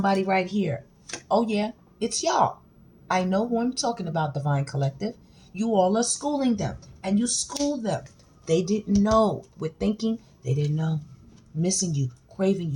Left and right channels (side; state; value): both; identical; correlation 1.00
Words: right here. Oh yeah, it's y'all. I know who I'm talking about, Divine Collective. You all are schooling them. And you school them. They didn't know. With thinking, they didn't know. Missing you, craving